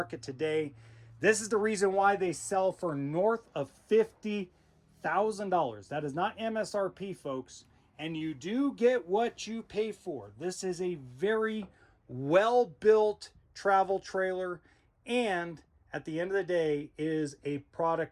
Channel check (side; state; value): both; identical; correlation 1.00